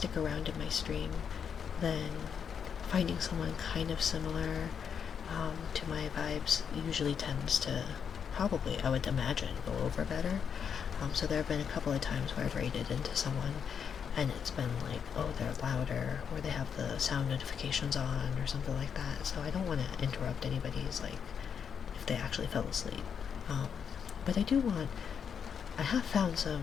around in my stream, then finding someone kind of similar to my vibes usually tends to probably, I would imagine, go over better. So there have been a couple of times where I've raided into someone and it's been like, oh, they're louder, or they have the sound notifications on, or something like that. So I don't want to interrupt anybody's, like, if they actually fell asleep. But I have found some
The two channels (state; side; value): quieter; right; 7.2 dB